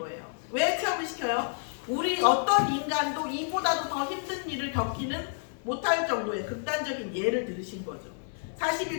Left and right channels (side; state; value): right; silent; digital silence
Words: 왜 체험을 시켜요? 우리 어떤 인간도 이보다도 더 힘든 일을 겪기는 못할 정도의 극단적인 예를 들으신 거죠.